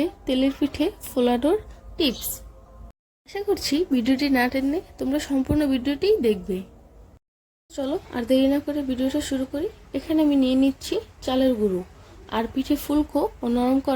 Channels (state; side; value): identical; both; correlation 1.00